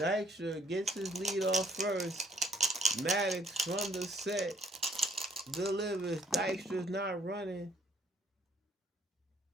gets his lead off first. Maddox from the set delivers. Dykstra's not running.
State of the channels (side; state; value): both; normal; correlation 0.64